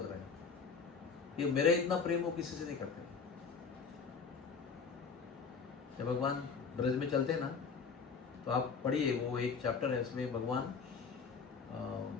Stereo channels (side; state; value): right; quieter; 5.5 dB